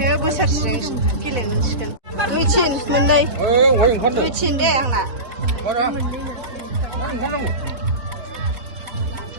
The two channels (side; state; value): left; late; 4.1 ms